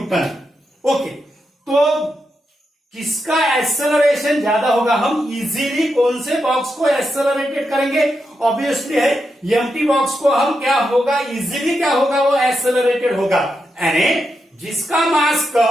ओके, तो किसका एक्सेलरेशन ज्यादा होगा? हम इजीली कौन से बॉक्स को एक्सेलरेटेड करेंगे? ऑब्वियसली है एम्प्टी बॉक्स को हम क्या होगा, इजीली क्या होगा, वो एक्सेलरेटेड होगा। यानी जिसका मास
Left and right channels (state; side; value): normal; both; correlation 0.85